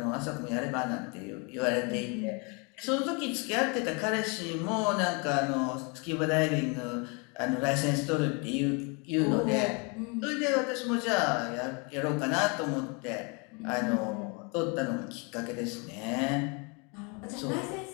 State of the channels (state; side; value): quieter; right; 32.4 dB